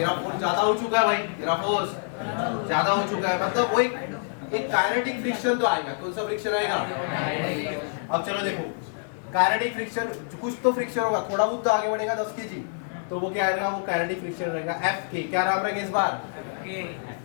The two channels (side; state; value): right; silent; 61 dB below the other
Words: फोर्स ज्यादा हो चुका है भाई, तेरा फोर्स ज्यादा हो चुका है, मतलब वो एक काइनेटिक फ्रिक्शन तो आएगा। कौन सा फ्रिक्शन आएगा? अब चलो देखो, काइनेटिक फ्रिक्शन कुछ तो फ्रिक्शन होगा, थोड़ा बहुत तो आगे बढ़ेगा 10 केजी, तो वो क्या आएगा? वो काइनेटिक फ्रिक्शन रहेगा। एफ के क्या नाम रहेगा इस बार?